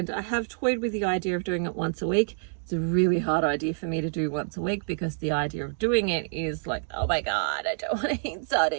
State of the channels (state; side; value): silent; left; digital silence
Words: I have toyed with the idea of doing it once a week. It's a really hard idea for me to do once a week, because the idea of doing it is like, oh my God, I don't want to eat